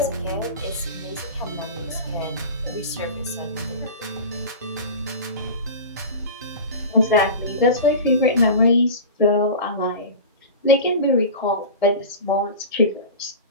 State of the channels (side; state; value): both; inverted; correlation -0.31